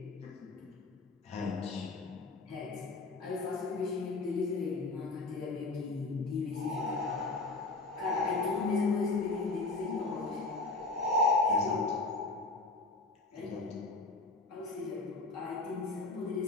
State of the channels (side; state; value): right; quieter; 3.4 dB